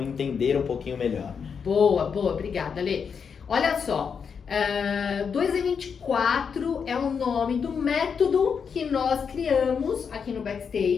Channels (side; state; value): right; quieter; 6.4 dB